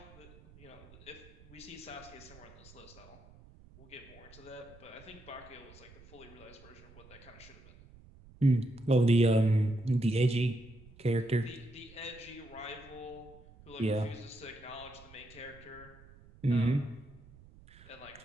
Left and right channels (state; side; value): noise; right; rumble, 22 dB below the sound